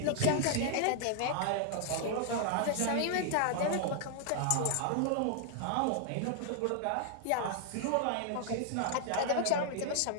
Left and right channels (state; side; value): different; both; correlation 0.00